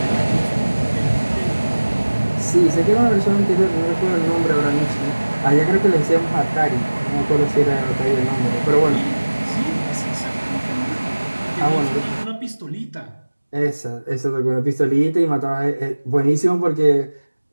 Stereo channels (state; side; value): inverted; both; correlation -1.00